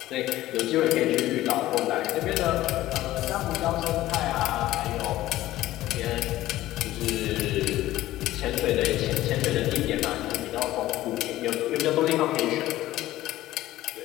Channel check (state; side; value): quieter; right; 15.4 dB